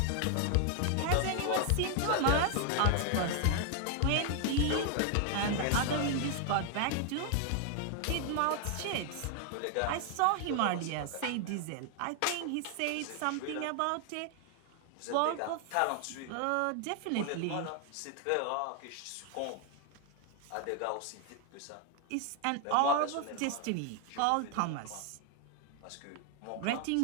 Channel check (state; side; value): different; both; correlation 0.00